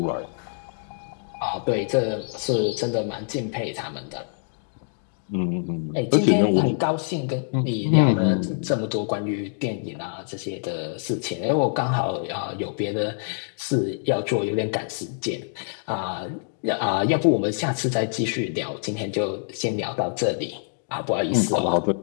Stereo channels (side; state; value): right; silent; digital silence